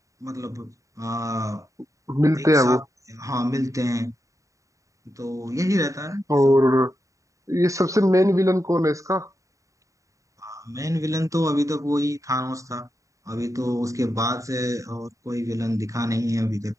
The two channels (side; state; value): left; late; 0.16 ms